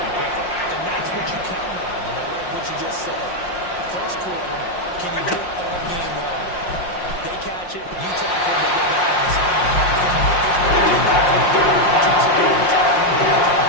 quicker. And that's what you count on. And I like what you just said. First quarter, can you do it all game long? They catch it, you tackle, they get back in the spin.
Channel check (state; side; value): late; right; 5.6 ms